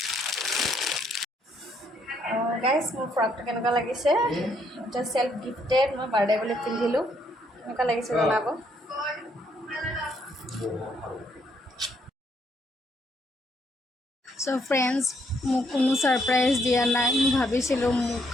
গাইজ, মোৰ ফ্ৰকটো কেনেকুৱা লাগিছে? এটা চেল্ফ গিফ্টেড, মই বাৰ্থডে বুলি পিন্ধিলোঁ। কেনেকুৱা লাগিছে জনাব। চ' ফ্ৰেণ্ডছ, মোক কোনো ছাৰপ্ৰাইজ দিয়া নাই। মই ভাবিছিলোঁ মোক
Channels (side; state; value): both; normal; correlation 0.71